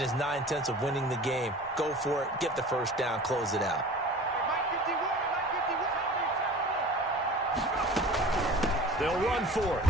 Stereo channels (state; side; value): normal; both; correlation 0.40